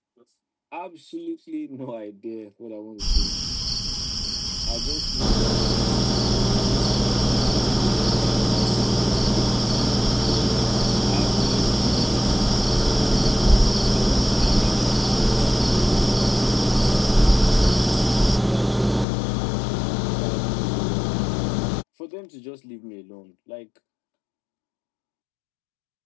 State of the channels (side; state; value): right; drops out; at 19.1 s